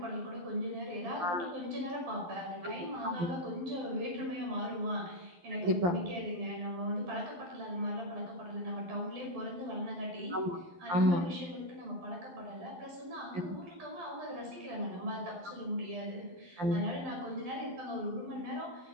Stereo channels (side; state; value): left; late; 12 ms